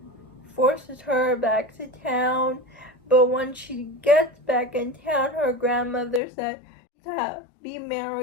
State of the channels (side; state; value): right; drops out; at 6.2 s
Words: forces her back to town. But when she gets back in town, her grandmother said to be